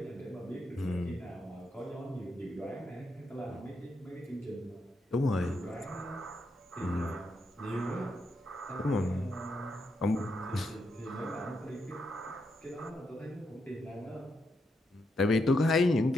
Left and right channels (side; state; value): both; normal; correlation 0.81